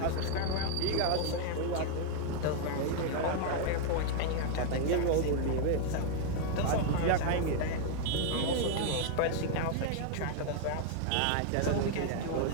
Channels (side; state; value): both; different; correlation 0.00